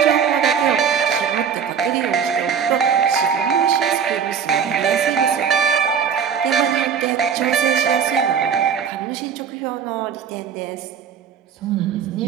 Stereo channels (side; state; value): left; quieter; 7.4 dB